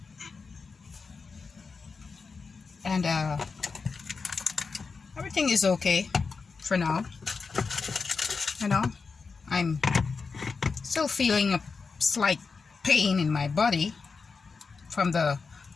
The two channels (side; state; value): right; quieter; 4.8 dB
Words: And everything is okay for now. I'm still feeling a slight pain in my body from the